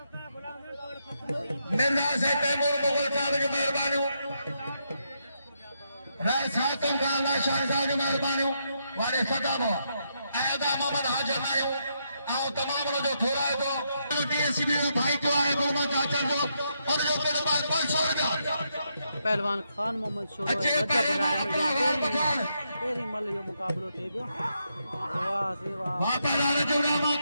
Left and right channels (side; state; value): both; inverted; correlation -0.80